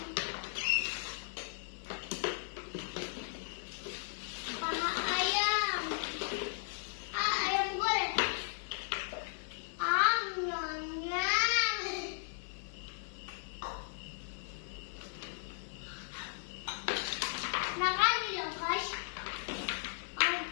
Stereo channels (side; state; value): right; silent; 54 dB below the other